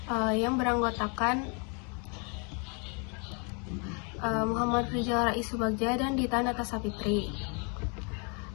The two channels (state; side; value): quieter; right; 33.9 dB